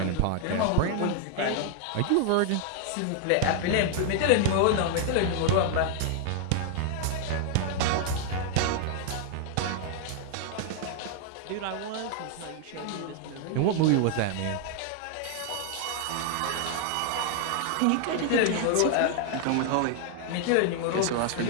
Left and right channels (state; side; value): different; both; correlation 0.00